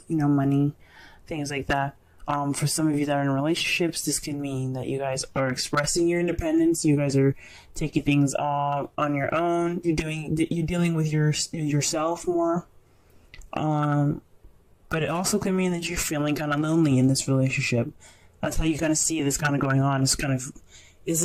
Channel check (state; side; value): identical; both; correlation 1.00